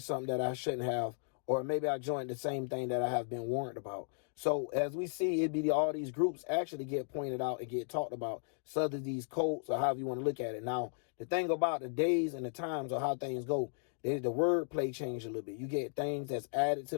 something that I shouldn't have, or maybe I joined the same thing that I have been warned about. So as we see, it be all these groups actually get pointed out and get talked about, such as these cults or however you want to look at it. Now, the thing about the days and the times or how things go, the wordplay change a little bit. You get things that's added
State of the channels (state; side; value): silent; right; digital silence